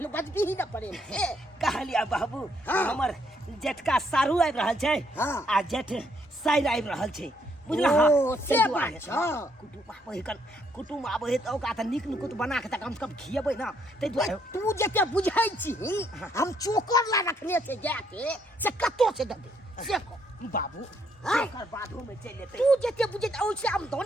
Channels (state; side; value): normal; both; correlation 0.71